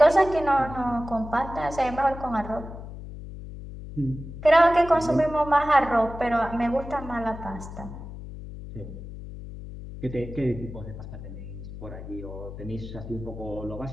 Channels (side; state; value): left; noise; hum, 11 dB below the sound